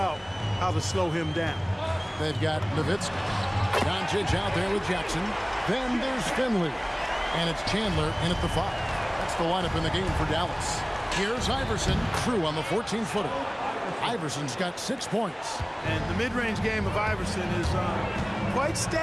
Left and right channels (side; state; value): both; identical; correlation 1.00